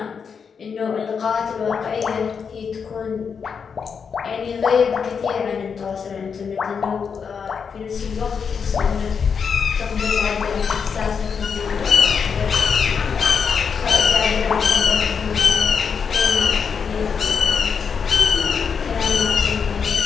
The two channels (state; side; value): quieter; right; 6.3 dB